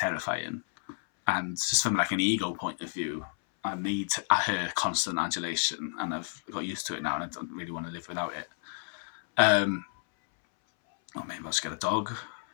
And just from like an ego point of view, I need her constant adulation, and I've got used to it now, and I don't really want to live without it. Or maybe I'll just get a dog.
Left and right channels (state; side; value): silent; right; 57 dB below the other